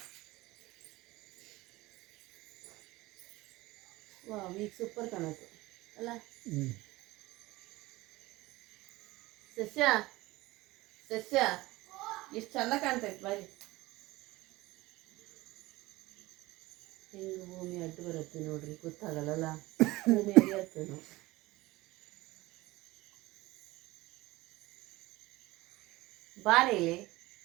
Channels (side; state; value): left; quieter; 19.6 dB